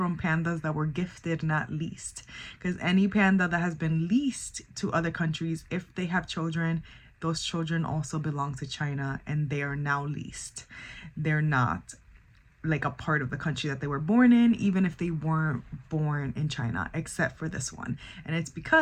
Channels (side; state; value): both; identical; correlation 1.00